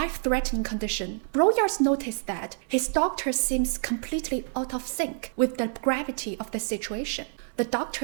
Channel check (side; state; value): left; silent; digital silence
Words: condition, Broyard noticed that his doctor seems completely out of sync with the gravity of the situation. The